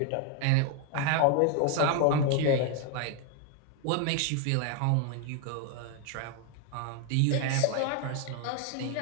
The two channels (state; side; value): different; both; correlation 0.01